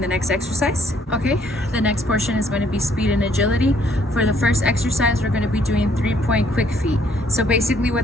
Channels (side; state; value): both; normal; correlation 0.65